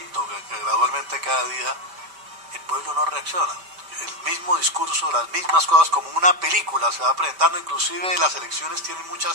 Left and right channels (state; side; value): late; left; 5.1 ms